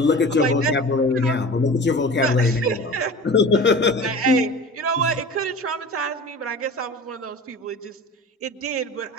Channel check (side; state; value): both; normal; correlation 0.37